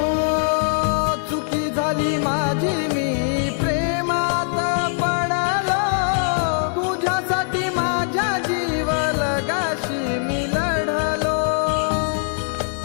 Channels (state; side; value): silent; right; digital silence